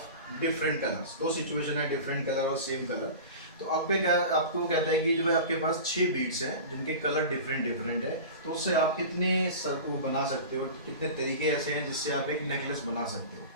different colours. दो सिचुएशन है, डिफरेंट कलर और सेम कलर। तो आपके क्या आपको कहता है कि जो है आपके पास 6 बीड्स हैं जिनके कलर डिफरेंट डिफरेंट है, तो उससे आप कितने वो बना सकते हो, कितने तरीके ऐसे हैं जिससे आप एक नेकलेस बना सकते हो।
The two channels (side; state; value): both; inverted; correlation -0.33